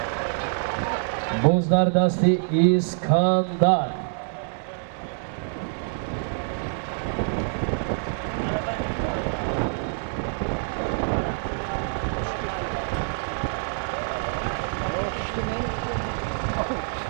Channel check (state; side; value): silent; left; digital silence